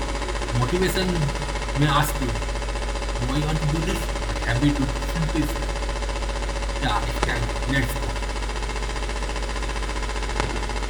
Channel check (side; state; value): both; identical; correlation 1.00